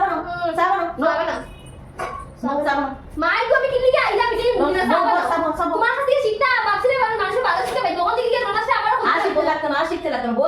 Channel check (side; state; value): both; identical; correlation 1.00